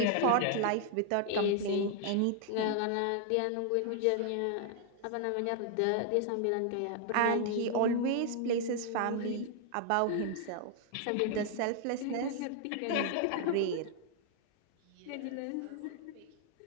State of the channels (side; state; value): both; different; correlation 0.00